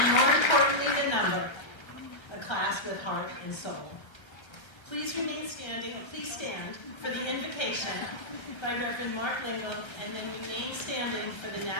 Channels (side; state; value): right; late; 1.3 ms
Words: more importantly than number, a class with heart and soul. Please stand for the invocation by Reverend Mark Lingle, and then remain standing for the